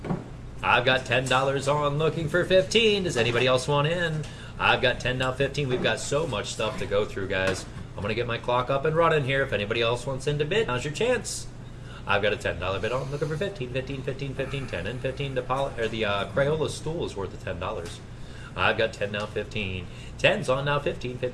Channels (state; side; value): identical; both; correlation 1.00